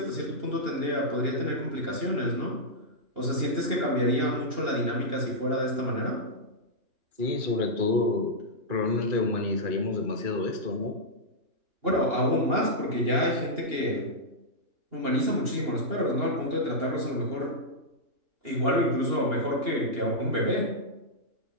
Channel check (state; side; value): late; left; 2.8 ms